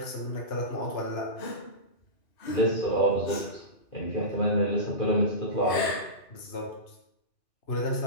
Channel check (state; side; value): late; right; 2.5 ms